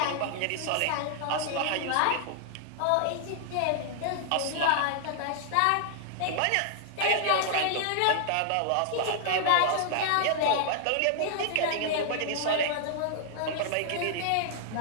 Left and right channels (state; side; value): different; both; correlation -0.01